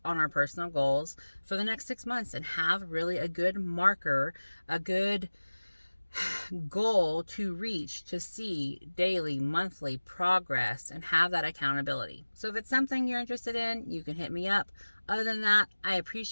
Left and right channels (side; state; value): both; inverted; correlation -1.00